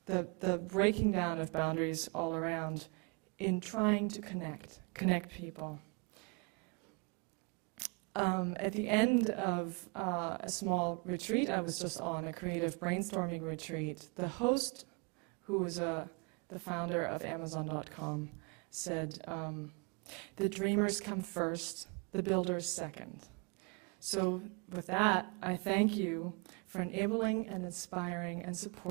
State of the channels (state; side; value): quieter; left; 32.7 dB